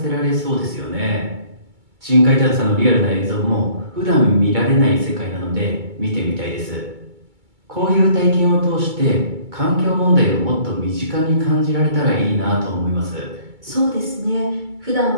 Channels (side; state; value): left; late; 2.2 ms